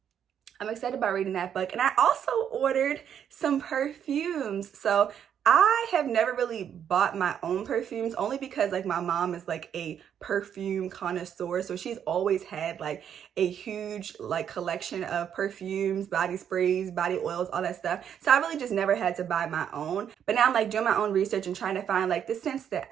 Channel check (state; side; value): quieter; left; 8.8 dB